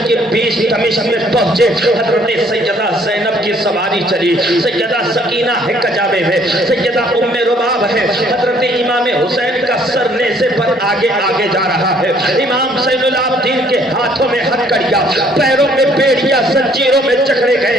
یہ بیچ دمشق میں پہنچے, حضرت سیدہ زینب کی سواری چلی, سیدہ سکینہ ہے کجاوے میں, سیدہ ام رباب ہے, حضرت امام حسین کا سر نیزے پر آگے آگے جا رہا ہے, امام زین العابدین کے ہاتھوں میں ہتھکڑیاں, پیروں میں بیڑیاں زنجیروں میں جکڑے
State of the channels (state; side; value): normal; both; correlation 0.62